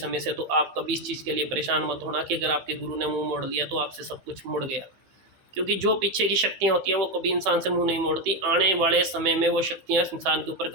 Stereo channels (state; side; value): late; left; 15 ms